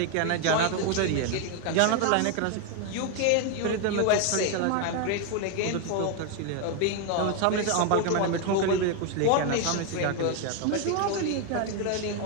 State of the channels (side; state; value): both; different; correlation 0.01